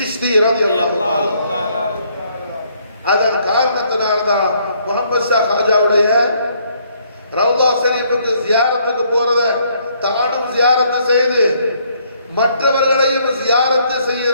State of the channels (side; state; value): both; inverted; correlation -0.68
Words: रज़ियल्लाहु तआला அதன் காரணத்தினால்தான் முஹம்மது ஷா காஜாவுடைய ரவுலா ஷரீஃபுக்கு ஜியாரத்துக்கு போறத தானும் ஜியாரத்து செய்து மற்றவர்களையும் ஜியாரத்து